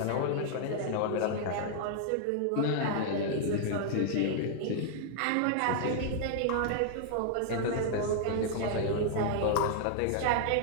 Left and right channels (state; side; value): different; both; correlation -0.01